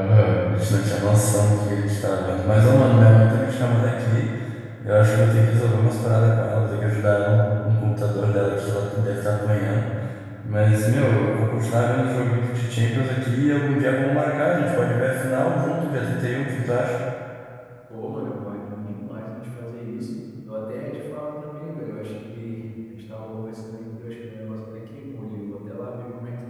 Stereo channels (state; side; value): identical; both; correlation 1.00